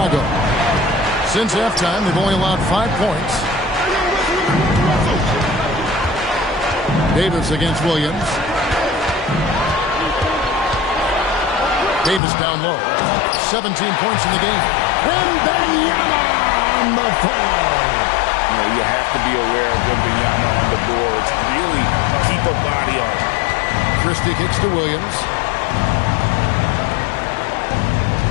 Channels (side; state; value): right; drops out; at 12.2 s